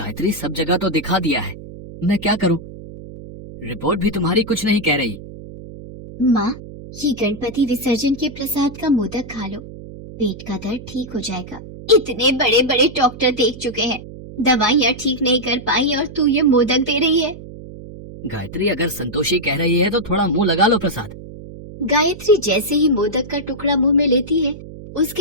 सब जगह तो दिखा दिया है, मैं क्या करूं? रिपोर्ट भी तुम्हारी कुछ नहीं कह रही। माँ, ये गणपति विसर्जन के प्रसाद का मोदक खा लो, पेट का दर्द ठीक हो जाएगा। इतने बड़े बड़े डॉक्टर देख चुके हैं, दवाइयाँ ठीक नहीं कर पाई और तू ये मोदक दे रही है। गायत्री, अगर संतोषी कह रही है तो थोड़ा मुंह लगा लो प्रसाद। गायत्री जैसे ही मोदक का टुकड़ा मुंह में लेती है,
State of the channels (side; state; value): right; noise; hum, 14 dB below the sound